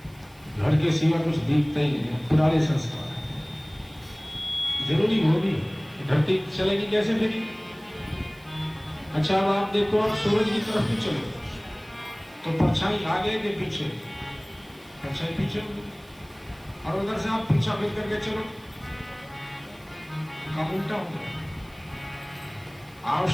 घर के सिवा कुछ दिखता ही नहीं, पुराने संस्कार जरूरी वो भी, धरती चलेगी कैसे फिर। अच्छा अब आप देखो, आप सूरज की तरफ भी चलो तो परछाई आगे के पीछे, परछाई पीछे, और उधर से आप पीछा फिर करके चलो, काम उल्टा हो गया।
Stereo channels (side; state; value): right; noise; hiss, 27 dB below the sound